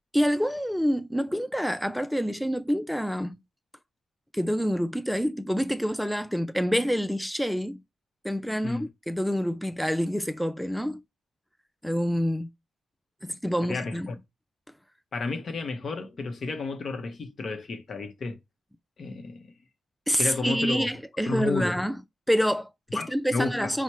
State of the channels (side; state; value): both; normal; correlation 0.97